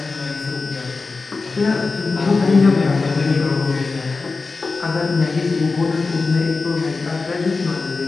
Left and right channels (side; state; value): right; quieter; 4.0 dB